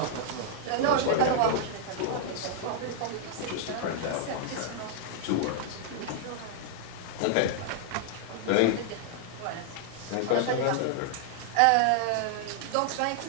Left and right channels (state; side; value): different; both; correlation -0.01